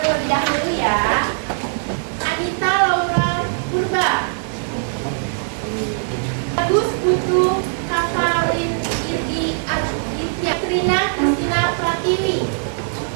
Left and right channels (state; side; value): silent; left; digital silence